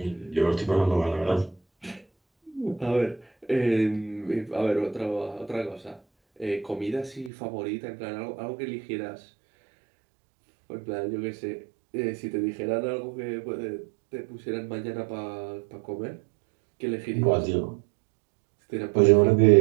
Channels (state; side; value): drops out; left; at 7.3 s